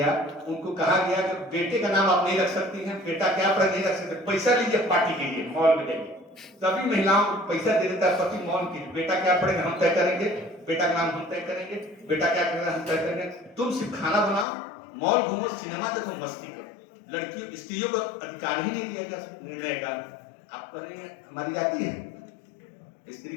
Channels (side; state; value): right; drops out; at 14.5 s